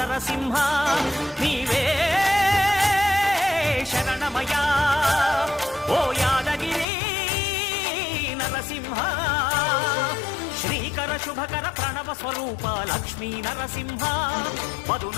నీవే శరణమయా ఓ యాదగిరి నరసింహ శ్రీకర శుభకర ప్రణవ స్వరూప లక్ష్మీ నరసింహ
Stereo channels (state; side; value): drops out; right; at 6.9 s